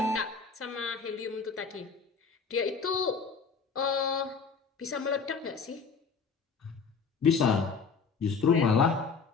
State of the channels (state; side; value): quieter; right; 5.3 dB